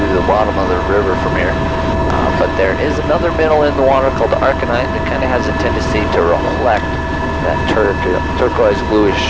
the bottom of the river from here. But there is another mineral in the water called the arcanite that kind of has a tendency to reflect that turquoise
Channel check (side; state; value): both; identical; correlation 1.00